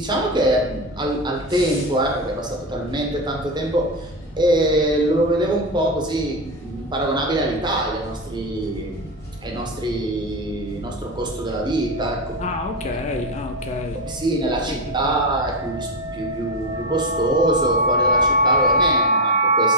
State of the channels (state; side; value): normal; both; correlation 0.12